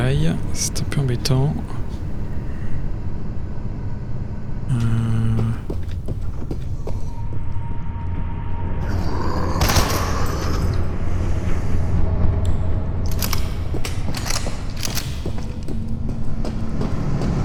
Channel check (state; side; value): identical; both; correlation 1.00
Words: c'est un peu embêtant.